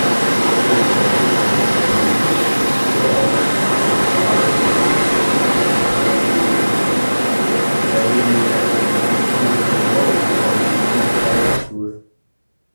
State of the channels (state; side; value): inverted; both; correlation -1.00